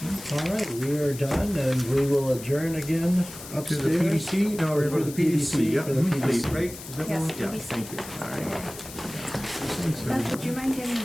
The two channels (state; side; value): noise; left; hiss, 14 dB below the sound